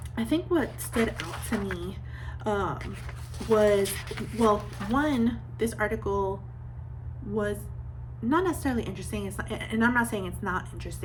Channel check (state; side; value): identical; both; correlation 1.00